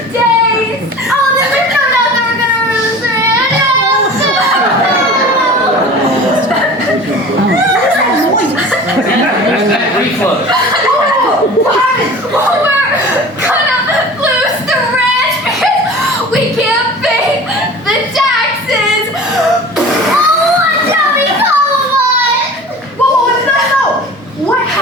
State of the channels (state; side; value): normal; both; correlation 0.39